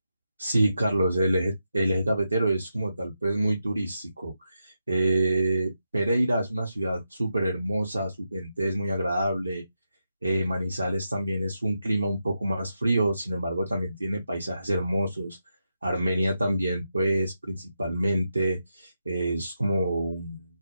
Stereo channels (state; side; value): inverted; both; correlation -0.86